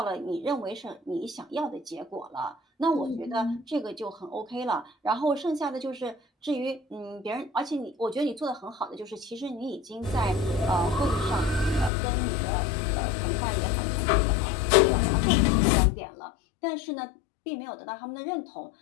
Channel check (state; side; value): drops out; right; at 11.9 s